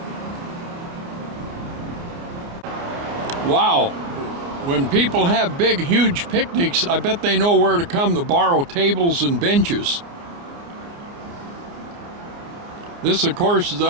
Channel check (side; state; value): left; late; 29 ms